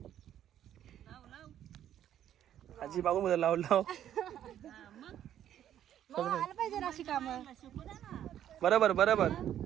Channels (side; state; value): left; quieter; 10.8 dB